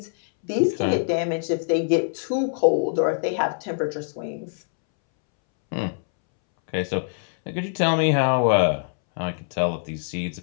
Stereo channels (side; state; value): right; silent; 63 dB below the other